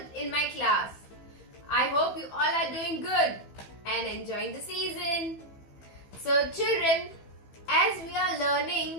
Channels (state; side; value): late; right; 15 ms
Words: in my class. I hope you all are doing good and enjoying the season. So children, as we are